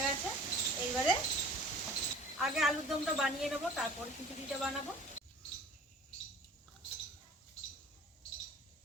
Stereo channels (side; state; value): both; normal; correlation 0.46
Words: গেছে। এইবারে আগে আলুর দমটা বানিয়ে নেবো, তারপর খিচুড়িটা বানাবো।